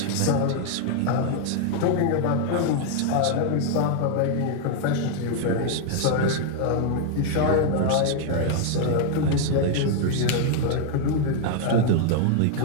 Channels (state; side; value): different; both; correlation 0.00